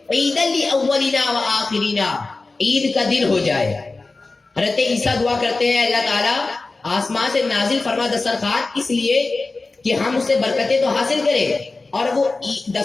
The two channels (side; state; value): right; quieter; 3.5 dB